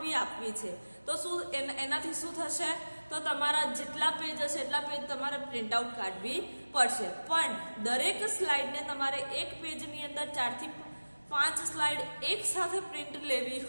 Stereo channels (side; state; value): both; inverted; correlation -1.00